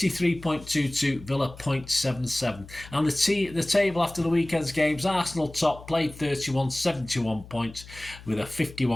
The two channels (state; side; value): noise; left; hum, 18 dB below the sound